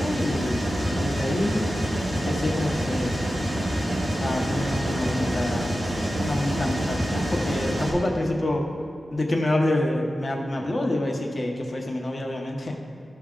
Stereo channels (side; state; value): both; normal; correlation 0.93